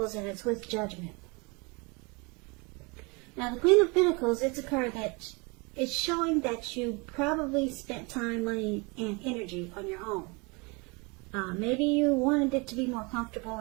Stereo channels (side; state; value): left; quieter; 28.9 dB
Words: and it's with Judgment. Now, the Queen of Pentacles, it's a card that is showing that you probably spent time, money, and energy on your home. Maybe you wanted it to be more comfortable